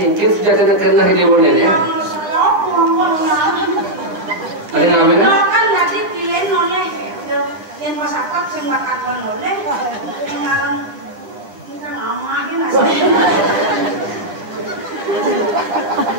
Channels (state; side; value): late; left; 9.6 ms